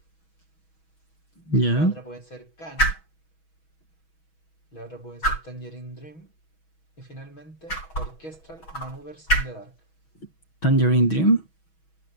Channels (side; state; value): right; late; 6.2 ms